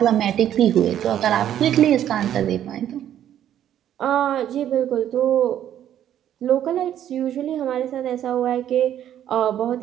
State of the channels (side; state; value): left; quieter; 10.9 dB